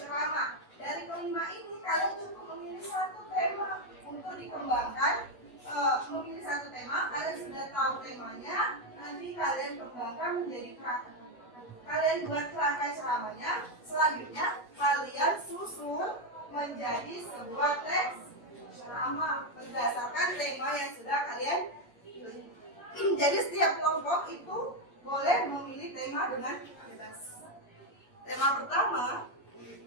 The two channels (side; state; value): right; late; 8.2 ms